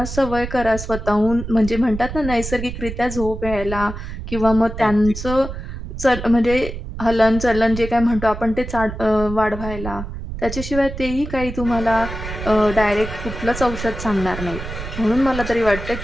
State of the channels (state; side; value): noise; right; rumble, 8 dB below the sound